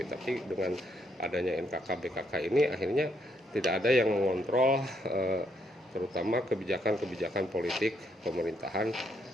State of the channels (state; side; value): normal; both; correlation 0.74